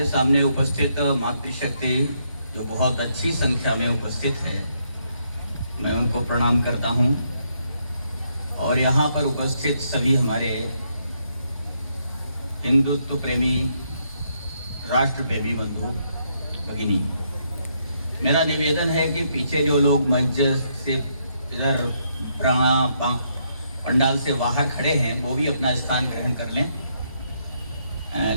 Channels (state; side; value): inverted; both; correlation -0.75